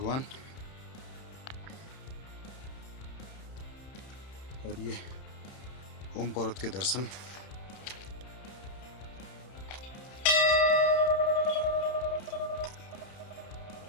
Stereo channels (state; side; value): late; right; 31 ms